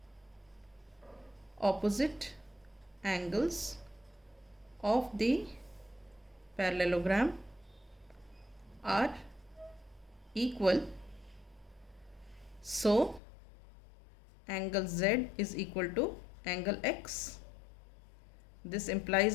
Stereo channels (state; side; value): drops out; right; at 13.2 s